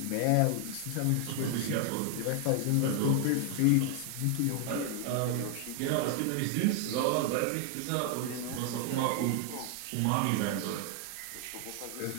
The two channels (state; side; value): different; both; correlation 0.00